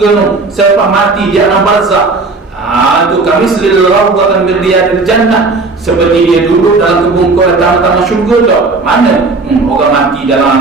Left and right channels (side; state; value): left; quieter; 3.7 dB